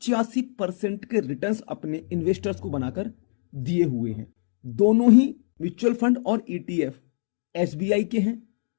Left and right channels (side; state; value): right; silent; digital silence